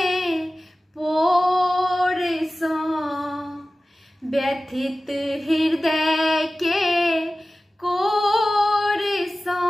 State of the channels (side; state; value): both; normal; correlation 0.96